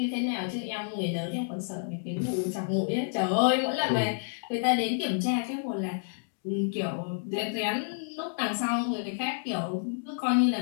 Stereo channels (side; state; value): right; silent; digital silence